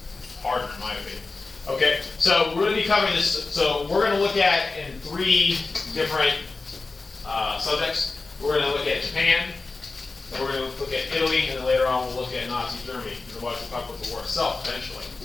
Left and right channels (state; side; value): quieter; right; 3.7 dB